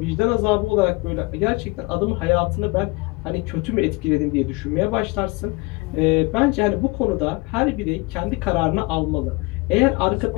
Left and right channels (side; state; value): right; quieter; 25.4 dB